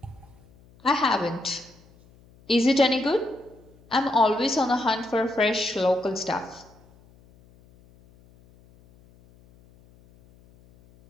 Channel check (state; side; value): noise; left; hum, 28 dB below the sound